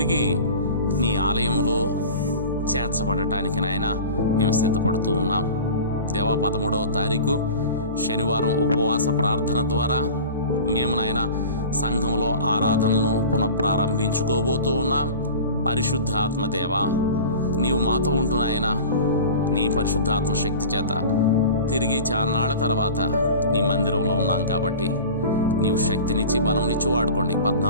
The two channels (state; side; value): inverted; both; correlation -0.37